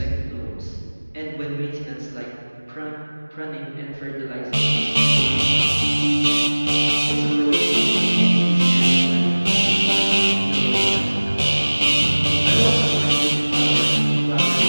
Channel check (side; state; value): both; inverted; correlation -1.00